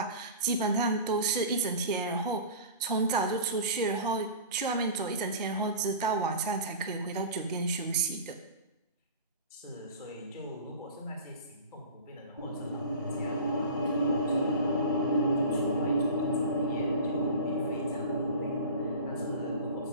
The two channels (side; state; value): both; inverted; correlation -0.35